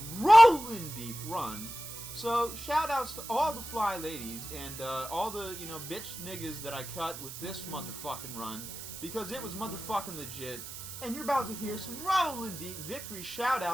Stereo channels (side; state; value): right; noise; hiss, 10 dB below the sound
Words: Rollin' Deep run. So, shout outs to all the fly ladies and all the, bitch niggas that I cut with this motherfucking run, because it was motherfucking legit. And you're about to hear some Rollin' Deep victory shout